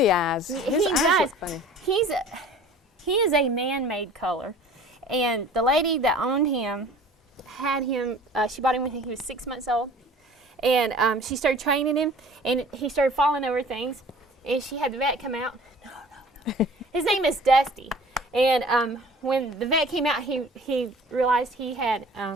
eyes. His eyes look funny. He is a man-made color. And the lady that owned him had him, she bought him when he was 6 months old. And she started training him, and he started falling over things. And she had the vet come out. No. His name is Dusty. And when the vet came out, he realized he had,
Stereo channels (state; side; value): normal; both; correlation 0.47